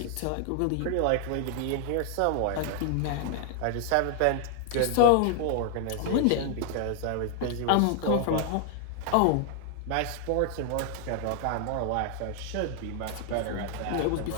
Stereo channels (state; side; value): different; both; correlation 0.00